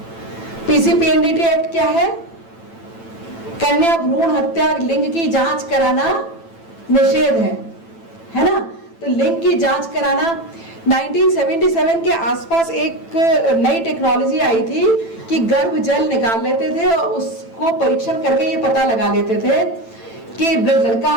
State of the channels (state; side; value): late; right; 9.0 ms